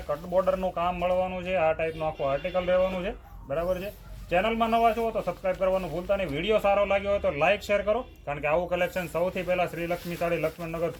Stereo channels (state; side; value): identical; both; correlation 1.00